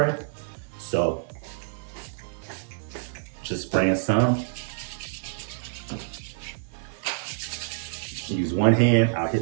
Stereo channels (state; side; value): silent; left; 59 dB below the other